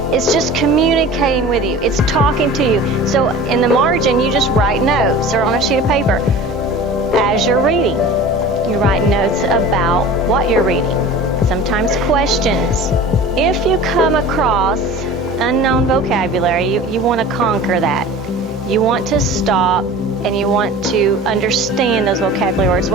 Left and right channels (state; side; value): normal; both; correlation 0.39